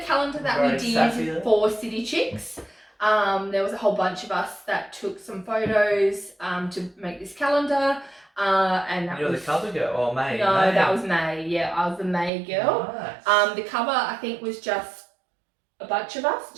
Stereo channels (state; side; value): drops out; left; at 12.3 s